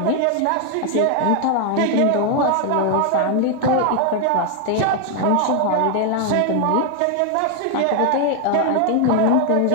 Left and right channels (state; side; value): different; both; correlation 0.00